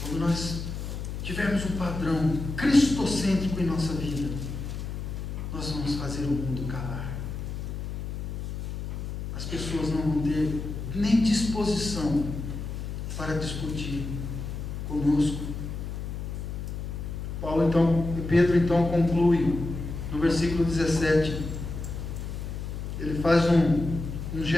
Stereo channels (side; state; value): left; noise; hum, 6 dB below the sound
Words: Quando nós tivermos um padrão cristocêntrico em nossa vida, nós vamos fazer o mundo calar. As pessoas não vão ter nem disposição para discutir conosco. Pedro então conclui no versículo 17. Ele faz um